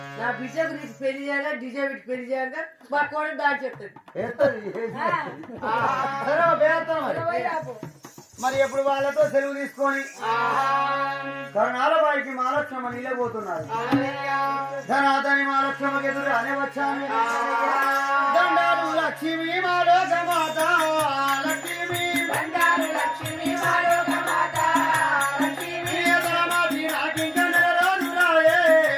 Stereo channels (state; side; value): identical; both; correlation 1.00